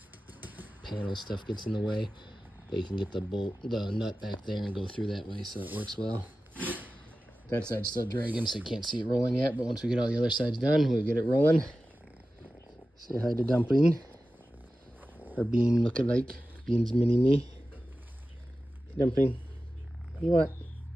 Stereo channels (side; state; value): both; normal; correlation 0.94